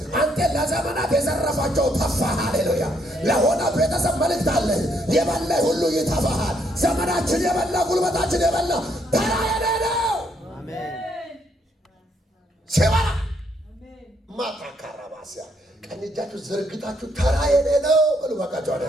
አንተ ለዘመናት የዘረፋቸው ተፋህ። ሃሌሉያ! ለሆነ ቤተሰብ መልእክት አለ። የበላ ሁሉ ይተፋሃል። ዘመናችን የበላ ጉልበታችን የበላ ተራ የሌለው ሲበላ ማታካራባሲያ ቀኝ እጃችሁ ዘርግታችሁ ተራ የሌለው በሉ ባካችሁ አለ።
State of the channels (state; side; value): normal; both; correlation 0.72